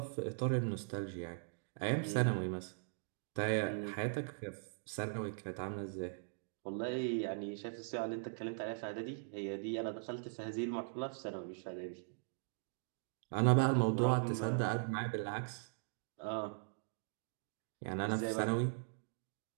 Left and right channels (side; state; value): left; silent; digital silence